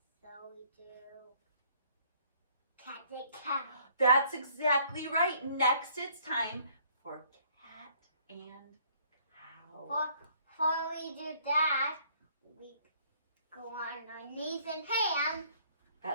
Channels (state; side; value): inverted; both; correlation -0.61